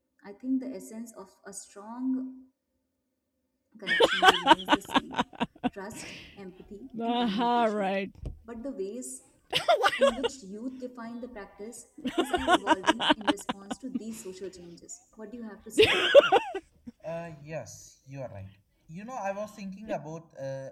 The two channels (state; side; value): identical; both; correlation 1.00